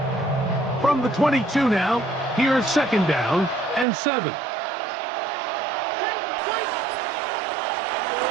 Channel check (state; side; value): drops out; left; at 3.9 s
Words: From the 22 now, here's second down and 7.